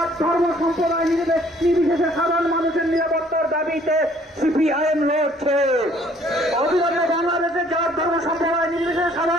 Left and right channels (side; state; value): both; normal; correlation 0.60